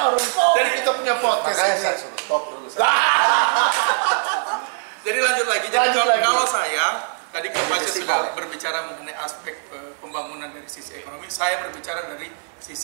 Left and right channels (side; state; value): left; silent; 64 dB below the other